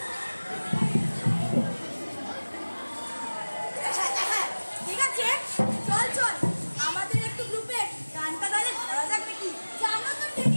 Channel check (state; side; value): inverted; both; correlation -1.00